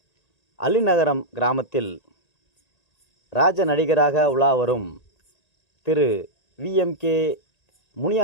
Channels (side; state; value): right; late; 1.9 ms